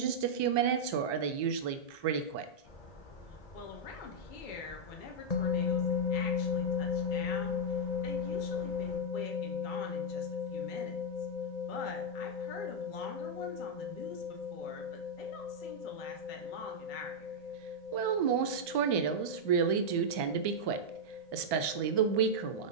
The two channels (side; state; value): right; late; 1.2 ms